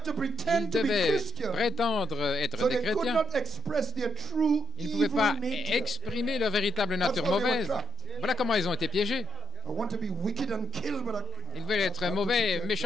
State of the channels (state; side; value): noise; left; rumble, 28 dB below the sound